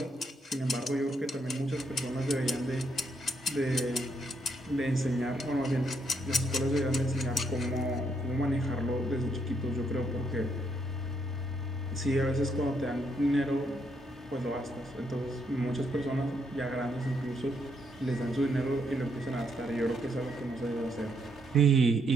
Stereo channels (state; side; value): normal; both; correlation 0.75